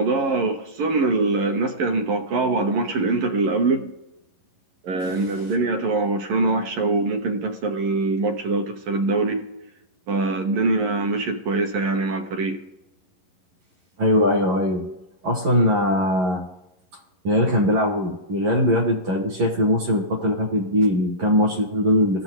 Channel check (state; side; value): late; left; 11 ms